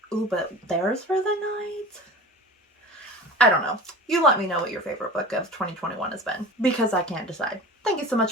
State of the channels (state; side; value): normal; both; correlation 0.35